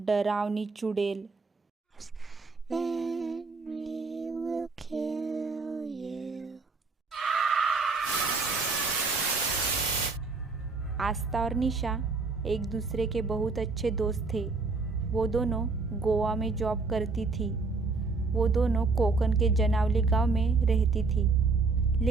चुड़ैल। आस्था और निशा एक दूसरे के बहुत अच्छे दोस्त थे। वो दोनों गोवा में जॉब करती थी। वो दोनों कोकण के जनावली गांव में रहती थी,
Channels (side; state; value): left; quieter; 4.1 dB